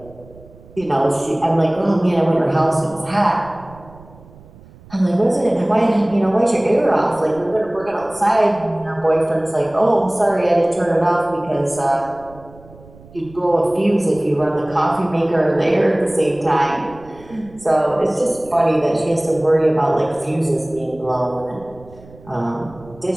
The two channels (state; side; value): noise; right; rumble, 22 dB below the sound